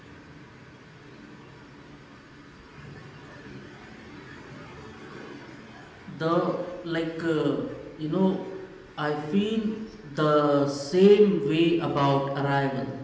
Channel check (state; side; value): identical; both; correlation 1.00